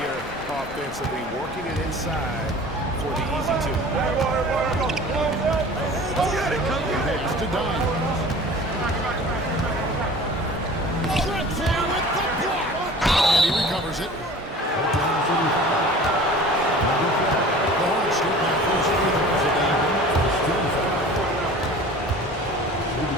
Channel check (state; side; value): normal; both; correlation 0.42